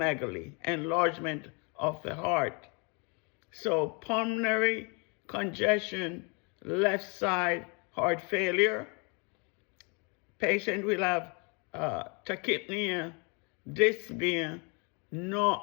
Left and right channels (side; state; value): right; quieter; 33.1 dB